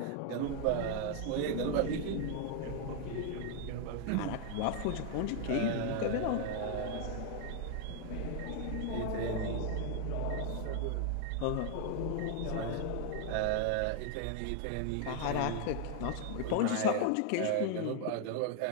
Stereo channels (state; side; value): different; both; correlation 0.00